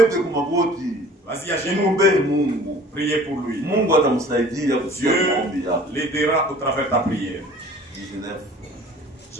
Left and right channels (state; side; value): normal; both; correlation 0.48